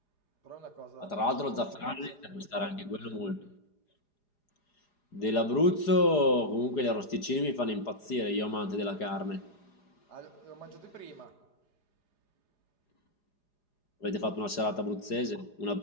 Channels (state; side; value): late; right; 4.9 ms